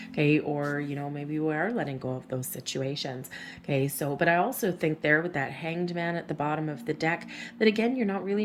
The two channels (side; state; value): both; identical; correlation 1.00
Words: Okay. Or, maybe we are letting go of those situations. Okay. So, but I also think there with that Hanged Man at the bottom of the deck, that again, you're not really